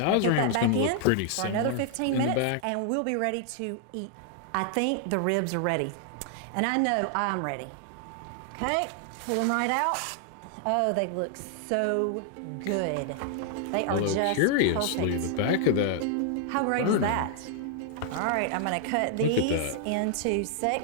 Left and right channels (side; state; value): both; different; correlation 0.00